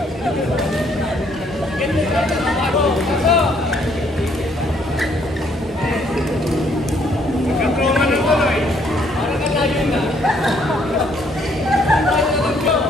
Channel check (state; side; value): normal; both; correlation 0.67